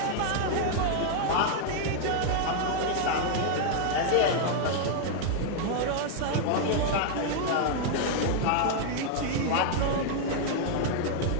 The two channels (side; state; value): both; different; correlation 0.00